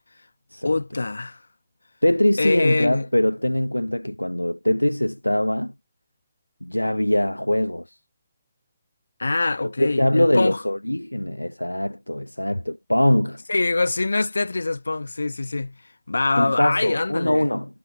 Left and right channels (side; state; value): both; inverted; correlation -0.99